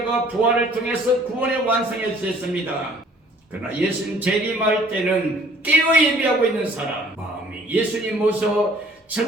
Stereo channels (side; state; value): both; normal; correlation 0.56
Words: 부활을 통해서 구원의 완성해 주셨습니다. 그러나 예수님 재림할 때는 깨어 예비하고 있는 사람, 마음이 예수님 모셔